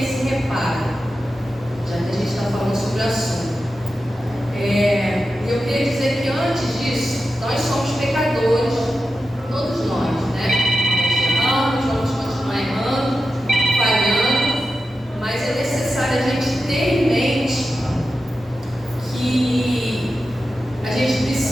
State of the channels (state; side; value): normal; both; correlation 0.91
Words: esse reparo, já que a gente está falando sobre o assunto. Eu queria dizer que antes disso, nós somos pecadores, todos nós, né? Nós erramos, vamos continuar errando, falhando, mas é necessário a gente ter em mente que a gente